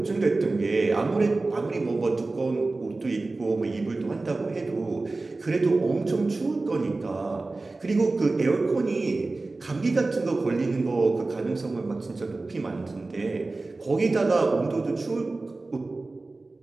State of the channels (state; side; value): quieter; left; 3.3 dB